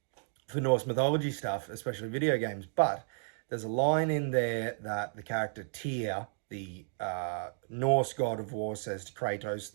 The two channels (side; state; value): left; silent; digital silence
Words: for Norse mythology stuff, especially video games. But there's a line in there that the character Tyr, the Norse god of war, says to Kratos,